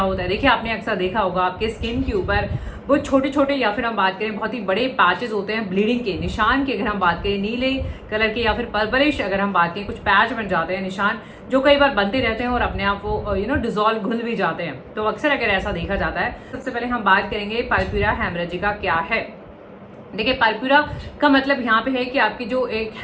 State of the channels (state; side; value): identical; both; correlation 1.00